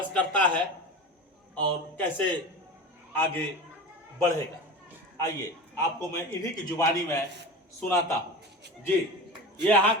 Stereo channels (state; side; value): normal; both; correlation 0.31